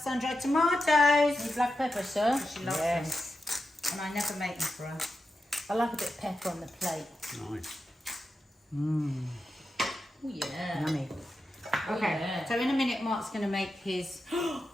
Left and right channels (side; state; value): both; normal; correlation 0.89